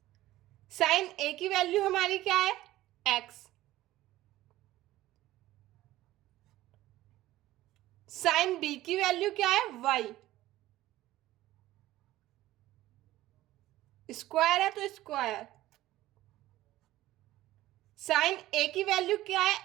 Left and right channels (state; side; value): quieter; left; 15.8 dB